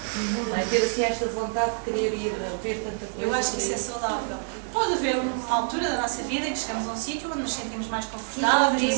Não é? Ter assim esta vontade de querer ir ver tanta coisa. Eu acho que isso é saudável. Pode haver uma altura da nossa vida em que chegamos a um sítio onde nos sentimos mais confortáveis, nos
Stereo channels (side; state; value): left; silent; 60 dB below the other